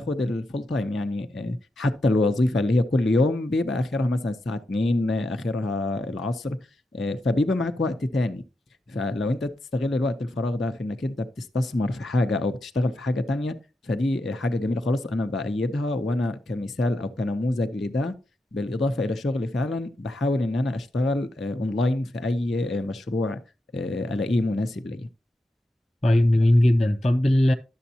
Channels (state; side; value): normal; both; correlation 0.87